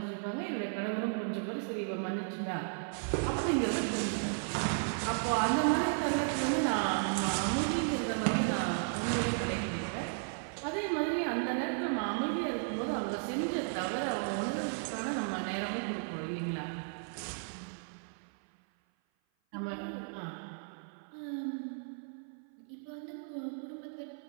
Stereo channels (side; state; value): left; silent; 55 dB below the other